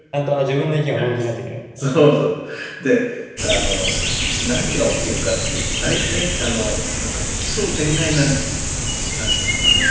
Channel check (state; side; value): identical; both; correlation 1.00